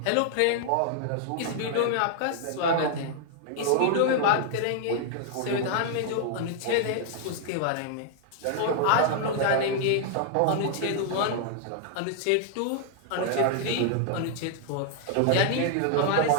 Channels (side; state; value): both; different; correlation -0.01